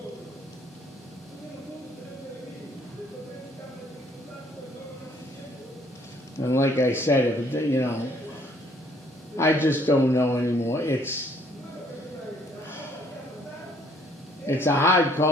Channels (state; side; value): normal; both; correlation 0.63